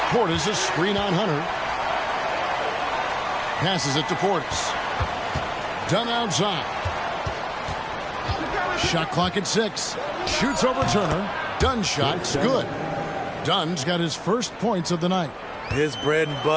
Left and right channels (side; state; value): both; identical; correlation 1.00